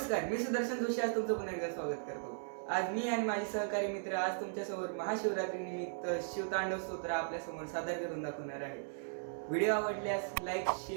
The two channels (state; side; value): silent; left; digital silence